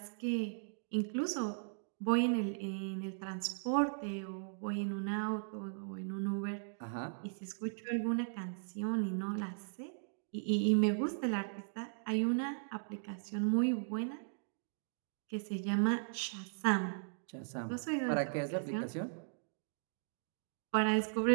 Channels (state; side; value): silent; left; digital silence